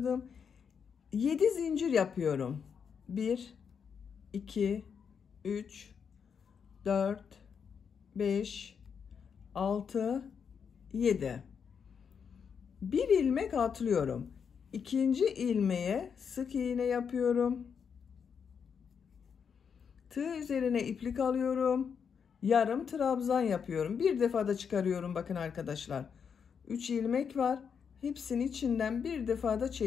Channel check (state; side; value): quieter; right; 6.8 dB